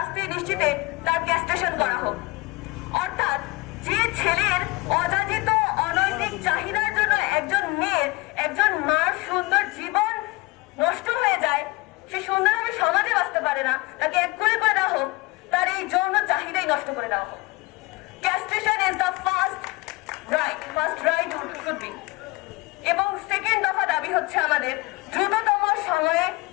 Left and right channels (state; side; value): quieter; right; 22.8 dB